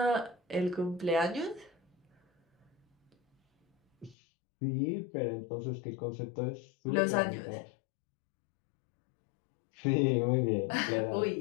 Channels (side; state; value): right; drops out; at 4.2 s